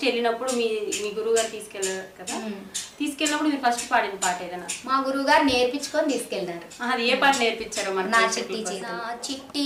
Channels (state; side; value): identical; both; correlation 1.00